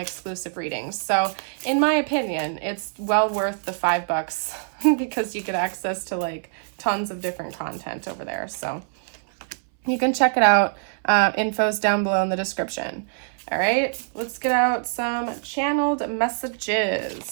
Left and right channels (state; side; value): silent; left; 62 dB below the other